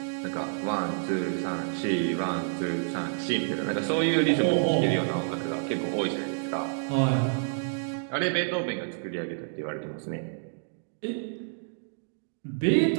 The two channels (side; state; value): left; silent; digital silence